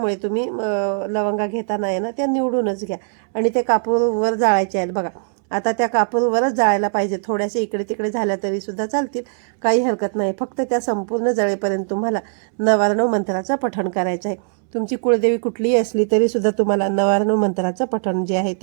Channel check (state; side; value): silent; left; 66 dB below the other